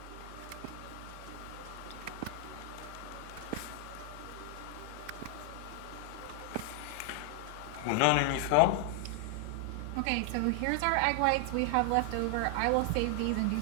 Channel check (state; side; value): different; both; correlation 0.00